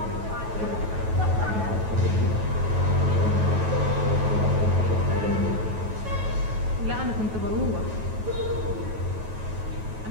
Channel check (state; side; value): late; left; 9.3 ms